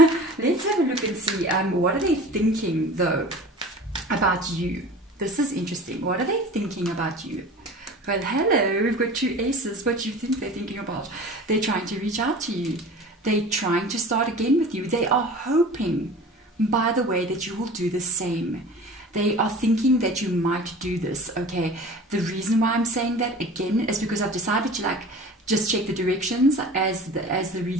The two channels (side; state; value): both; normal; correlation 0.39